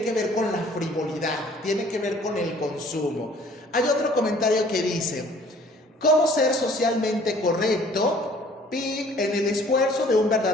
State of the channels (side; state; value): both; normal; correlation 0.54